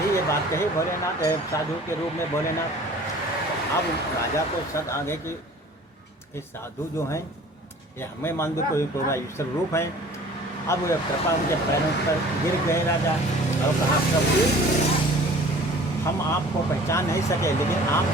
ये बात कही भोलेनाथ साधु के रूप में भोलेनाथ, अब राजा को शक आ गए कि ये साधु जो हैं ये हमें मान दो कोई ईश्वर रूप है। अब वो कृपा उनके पैरों पर गिर गए राजा और कहा प्रभु हम आपको पहचान नहीं सके, लेकिन आप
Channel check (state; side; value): normal; both; correlation 0.48